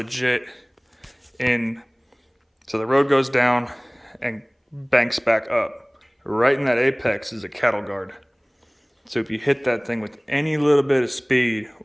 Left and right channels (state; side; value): identical; both; correlation 1.00